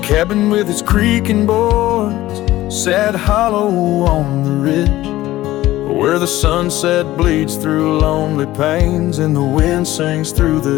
cabin with its creaking boards sat hollow on the ridge, where the sunset bleeds through lonely panes and the wind sings through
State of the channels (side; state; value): right; quieter; 15.9 dB